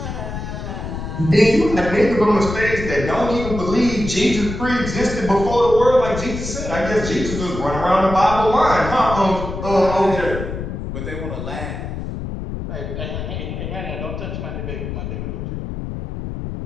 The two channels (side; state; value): left; noise; rumble, 6 dB below the sound